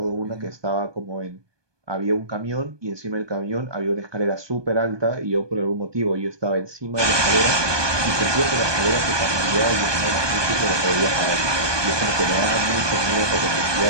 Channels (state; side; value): late; left; 1.2 ms